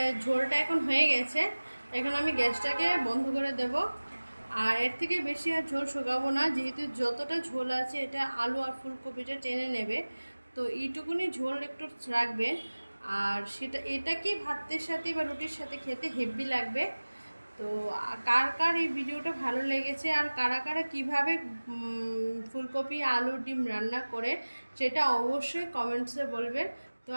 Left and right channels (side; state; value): both; inverted; correlation -1.00